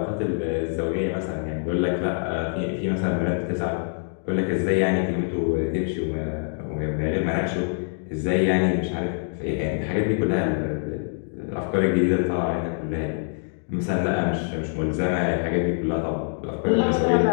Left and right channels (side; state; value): right; silent; 62 dB below the other